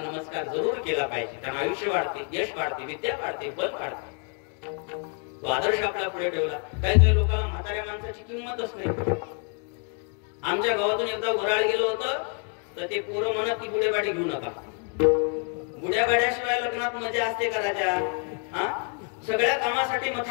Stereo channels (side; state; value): right; quieter; 39.0 dB